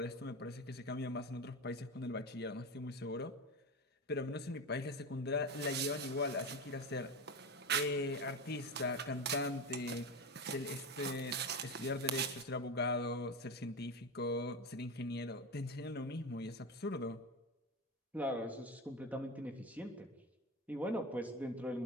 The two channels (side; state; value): both; normal; correlation 0.20